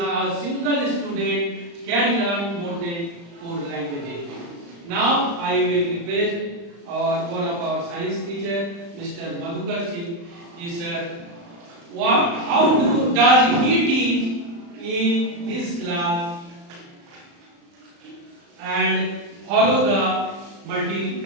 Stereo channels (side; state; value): left; late; 35 ms